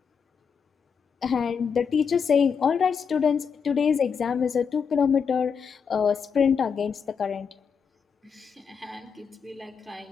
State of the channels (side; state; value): right; quieter; 6.4 dB